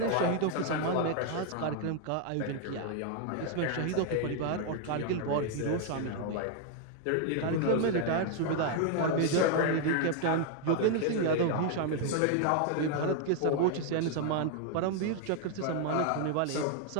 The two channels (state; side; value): different; both; correlation 0.00